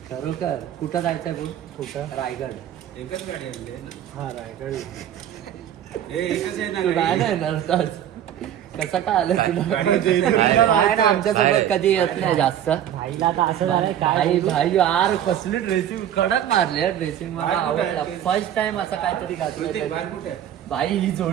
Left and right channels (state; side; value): quieter; left; 10.6 dB